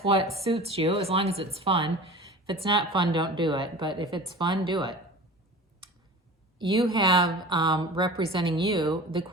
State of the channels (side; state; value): both; normal; correlation 0.38